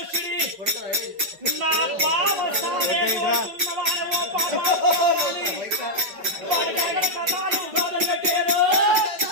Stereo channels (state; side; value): late; left; 5.6 ms